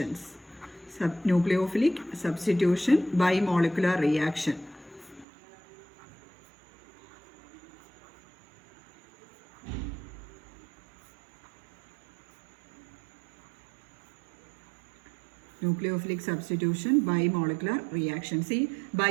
Nucleophilic substitution bimolecular reaction. Nucleophilic substitution bimolecular reaction. See,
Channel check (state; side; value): drops out; left; at 5.2 s